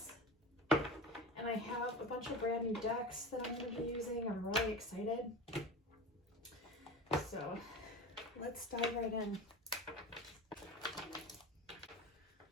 And I have a bunch of brand new decks that I'm going to be using. I'm really excited. So let's dive right in.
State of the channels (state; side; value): normal; both; correlation 0.30